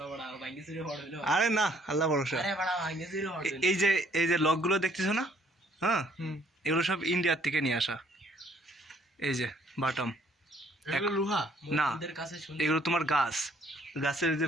আরে না, আল্লাহ ভরসা। এই যে লকগুলো দেখতেছো না? হ্যাঁ, এগুলো সব ইন্ডিয়ার থেকে নিয়ে আসা। এই যে বাটাম, লোহা না, এগুলো তোমার গাছের যে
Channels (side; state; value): both; normal; correlation 0.63